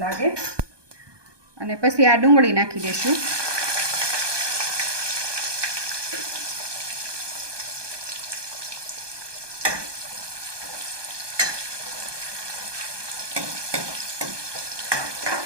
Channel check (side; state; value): left; late; 1.2 ms